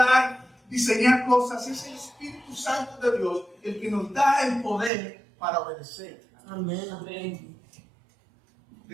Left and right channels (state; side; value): drops out; left; at 4.9 s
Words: diseñar cosas, es el Espíritu Santo de Dios el que nos da el poder para obedecer. Amén, amén.